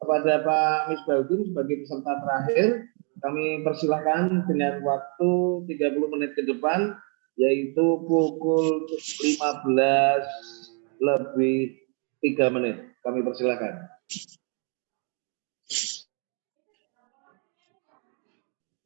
kepada Pak Misbahuddin sebagai peserta terakhir, kami persilahkan dengan waktu 30 menit ke depan, yaitu pukul 15 lebih 3 menit. Kami persilahkan.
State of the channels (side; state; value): left; quieter; 39.1 dB